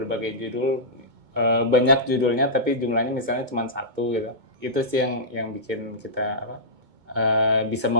judul, banyak judulnya tapi jumlahnya misalnya cuma satu gitu. Itu sih yang bikin kita bisa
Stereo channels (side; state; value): left; late; 2.2 ms